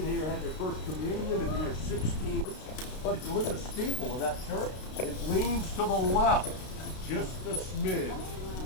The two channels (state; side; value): late; right; 32 ms